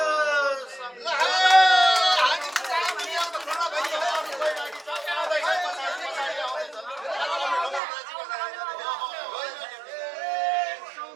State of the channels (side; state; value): left; drops out; at 7.8 s